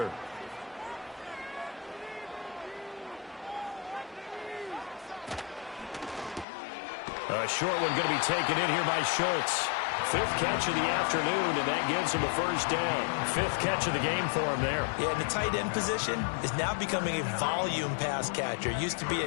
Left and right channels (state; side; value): drops out; right; at 6.5 s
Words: A short one going to be taken in here by Schultz. 5th catch of the afternoon, and that gives him a first down. 5th catch of the game for him there. Yeah, and the tight end position is now becoming a volume pass catcher. It used to be